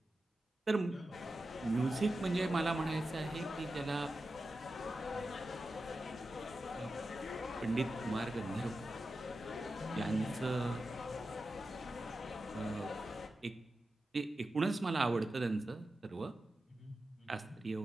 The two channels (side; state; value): both; normal; correlation 0.91